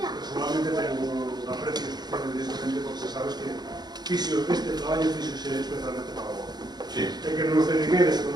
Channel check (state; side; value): late; left; 0.20 ms